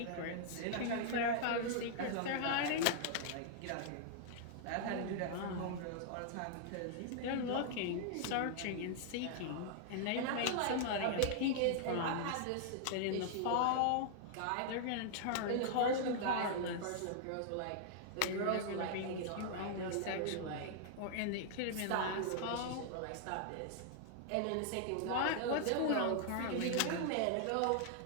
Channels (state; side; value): different; both; correlation -0.01